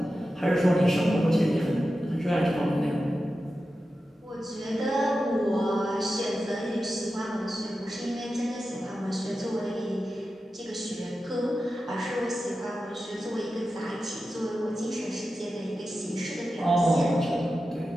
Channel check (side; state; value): both; normal; correlation 0.92